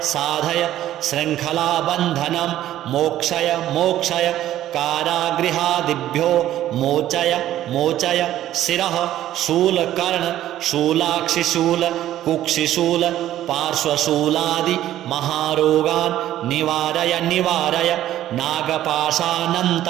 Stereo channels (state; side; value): quieter; left; 12.9 dB